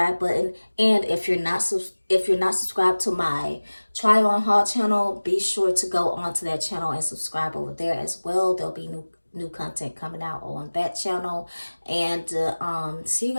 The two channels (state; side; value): inverted; both; correlation -1.00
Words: button, and if you're not subscribed to my try on haul channel, be sure to go onto that channel and subscribe over there as well. There'll be new content coming out on that channel. And see you